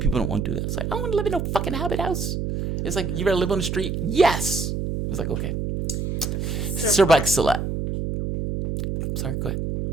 don't want to do that. It's like, I don't want to live in no fucking Hobbit house. It's like, you better live on the street? Yes! It's like, okay. Sir Bike Salat. Sorry, go ahead.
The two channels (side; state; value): right; noise; hum, 2 dB below the sound